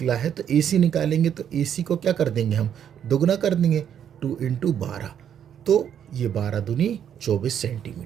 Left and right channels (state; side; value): quieter; left; 9.2 dB